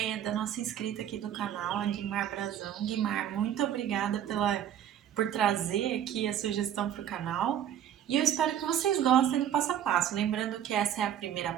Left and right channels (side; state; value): left; quieter; 10.2 dB